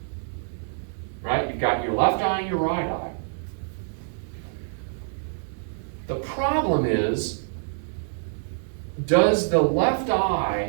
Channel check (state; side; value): silent; left; 61 dB below the other